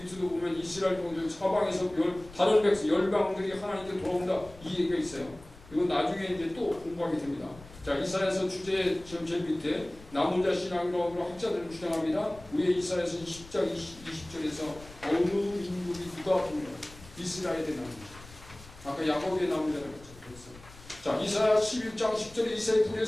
보면 이스라엘 종족 사방에서 다른 백성 열방들이 하나님께 돌아온다 이 얘기가 있어요. 이건 나중에 이제 또 공부하게 됩니다. 자, 이사야서 주제 제일 밑에 남은 자 신앙이라고 학자들은 주장합니다. 위에 이사야서 10장 20절에서 어느 민족이 누가 보면 이스라엘의 남은 자. 아까 야곱의 남은 자라고 했죠. 자, 이사야 11장 10절에 이사야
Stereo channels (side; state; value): left; noise; rumble, 20 dB below the sound